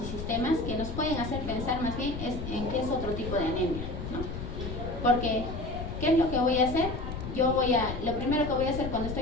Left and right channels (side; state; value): left; noise; rumble, 7 dB below the sound